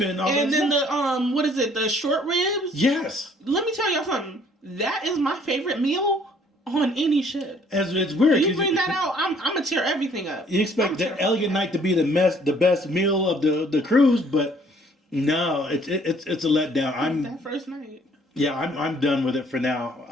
all and that then stuff. what is it? The short ribs. Yes. Let me tell y'all something. That is my favorite meal on any ship. It's weird. You bring that out, I'm gonna tear everything up. You expect the Elegant Night to be the best meal of the cruise, but no, it's a letdown. That first night. Yeah, I'm done with it for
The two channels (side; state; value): both; normal; correlation 0.60